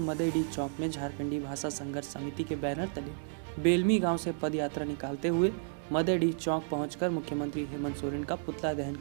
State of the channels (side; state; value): left; silent; digital silence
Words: चौक में झारखंडी भाषा संघर्ष समिति के बैनर तले बेलमी गांव से पद यात्रा निकालते हुए मदेडी चौक पहुंचकर मुख्यमंत्री हेमंत सोरेन का पुतला दहन